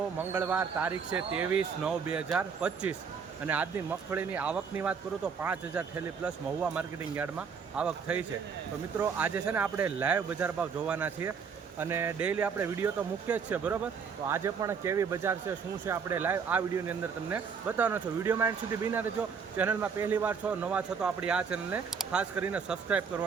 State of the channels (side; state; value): left; quieter; 6.1 dB